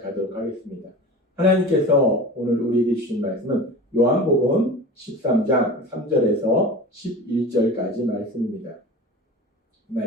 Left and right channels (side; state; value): both; normal; correlation 0.34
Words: 하겠습니다. 하나님께서 오늘 우리에게 주신 말씀은 요한복음 13장 3절에서 11절까지 말씀입니다. 이